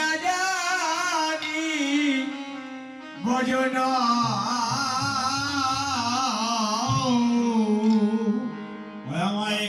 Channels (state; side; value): identical; both; correlation 1.00